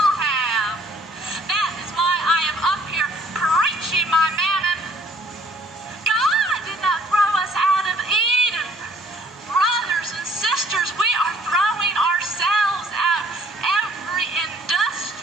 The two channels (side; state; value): both; normal; correlation 0.59